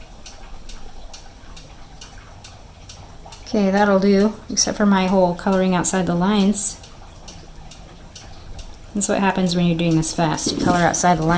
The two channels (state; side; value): identical; both; correlation 1.00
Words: Okay, that'll do, except for my whole coloring outside the lines. That's what happens when you're doing this fast. You color outside the